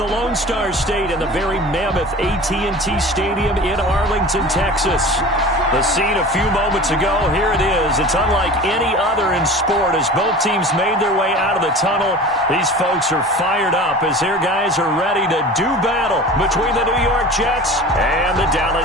Lone Star State and the very mammoth AT&T Stadium in Arlington, Texas. The scene a few moments ago, here it is. It's unlike any other in sport as both teams made their way out of the tunnel. These folks are fired up as their guys are ready to do battle between the New York Jets and the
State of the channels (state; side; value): normal; both; correlation 0.38